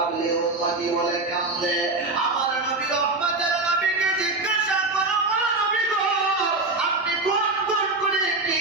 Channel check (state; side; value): quieter; left; 3.2 dB